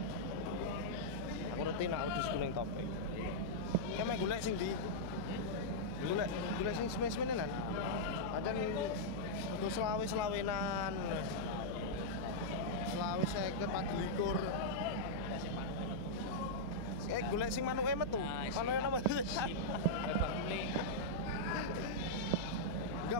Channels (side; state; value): left; noise; hum, 10 dB below the sound